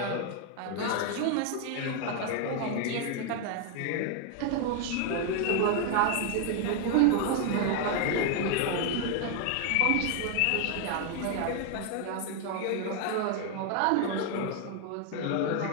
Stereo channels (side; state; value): both; different; correlation 0.00